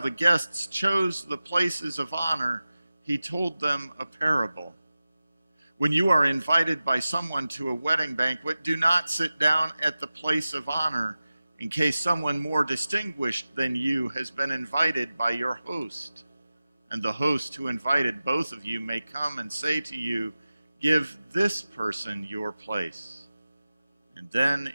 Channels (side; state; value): both; inverted; correlation -0.95